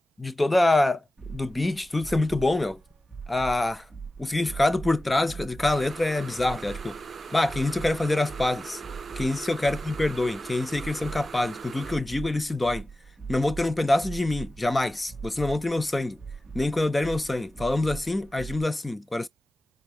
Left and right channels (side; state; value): both; normal; correlation 0.95